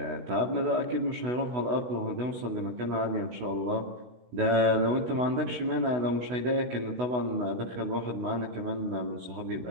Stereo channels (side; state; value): left; late; 16 ms